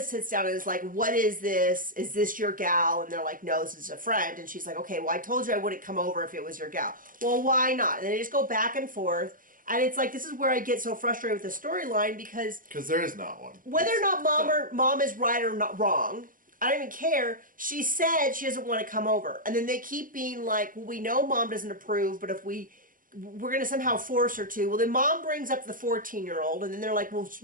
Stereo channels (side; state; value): left; late; 0.40 ms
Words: sits down and is like, what is this? Is this your gal? And they're like, no, this is a friend. And she's like, okay, well, I told you I wouldn't come over if it was your gal. Well, why not? And they just go back and forth. And it's like, this is where I get so frustrated with the storyline because there is not one. Whether or not mom is right or not wrong, I don't even care. She said she doesn't want to come over. And then they keep being like, well, we know mom doesn't approve, but if we're going to somehow force her to. Well, then mom brings up the 14-year-old, and then they're like, well,